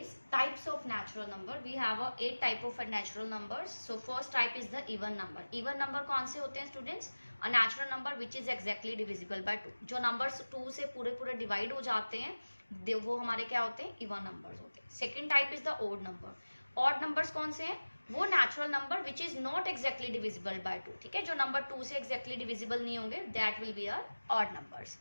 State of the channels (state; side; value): inverted; both; correlation -1.00